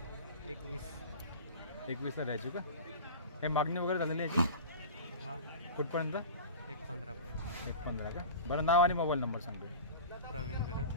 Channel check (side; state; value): both; inverted; correlation -0.34